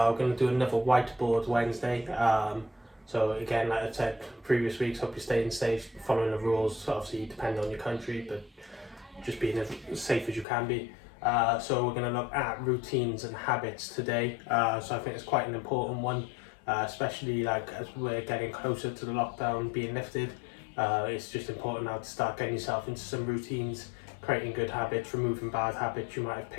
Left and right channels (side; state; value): right; drops out; at 10.5 s